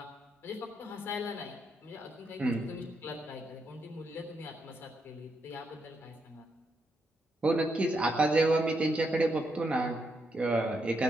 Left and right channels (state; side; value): normal; both; correlation 0.80